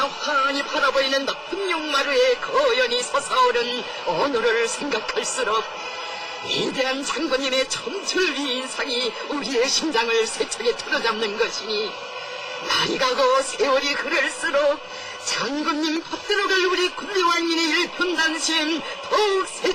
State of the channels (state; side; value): identical; both; correlation 1.00